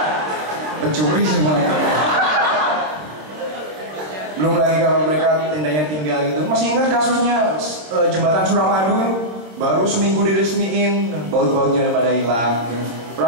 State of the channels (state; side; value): late; left; 26 ms